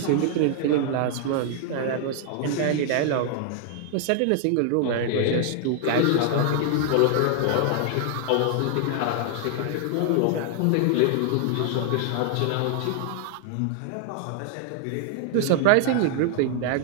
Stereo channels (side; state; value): both; different; correlation 0.00